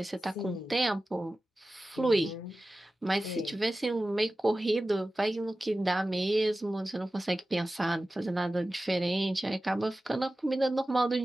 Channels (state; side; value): normal; both; correlation 0.95